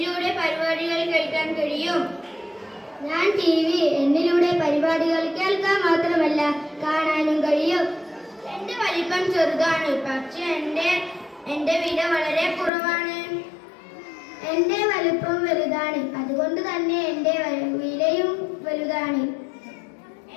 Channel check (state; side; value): drops out; right; at 12.7 s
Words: പരിപാടികൾ കേൾക്കാൻ കഴിയും. ഞാൻ TV, എന്നിലൂടെ പരിപാടികൾ കേൾക്കാൻ മാത്രമല്ല കാണാനും കഴിയും. എന്റെ വലിപ്പം ചെറുതാണ്, പക്ഷെ എന്റെ വില വളരെ കുറവാണ്. എന്റെ വലുപ്പം വലുതാണ്, അതുകൊണ്ട് തന്നെ എന്റെ വിലയും വലുതാണ്.